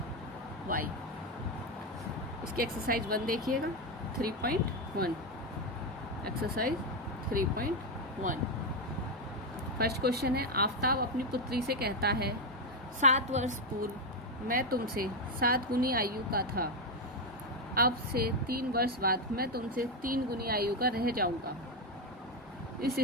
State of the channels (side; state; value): both; normal; correlation 0.07